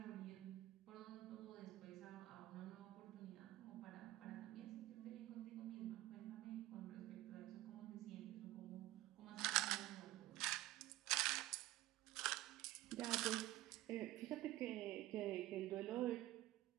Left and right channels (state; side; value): quieter; left; 16.5 dB